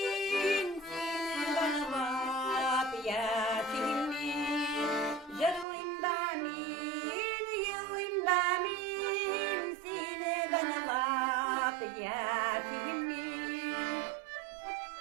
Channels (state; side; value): drops out; left; at 5.7 s